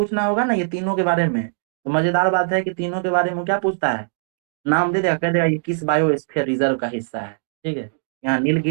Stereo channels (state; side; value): silent; left; digital silence